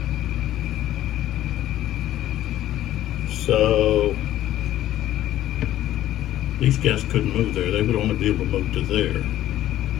So these guys couldn't move there. They would only be able to move to there.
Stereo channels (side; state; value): right; quieter; 13.3 dB